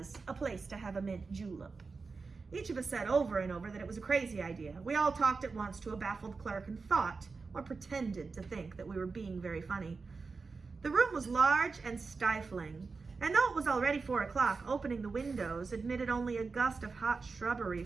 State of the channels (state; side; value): quieter; left; 4.4 dB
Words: a place to have a mint julep. Each of us said over and over that it was a crazy idea. We all talked at once to a baffled clerk and thought, or pretended to think, that we were being very funny. The room was large and stifling, and though it was already 4 o'clock, opening the windows admitted only a gust of hot shrubbery